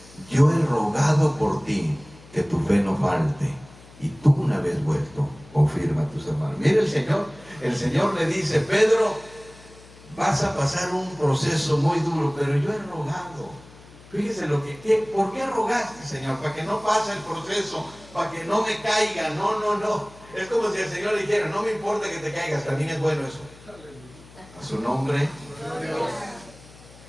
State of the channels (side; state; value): left; noise; hum, 22 dB below the sound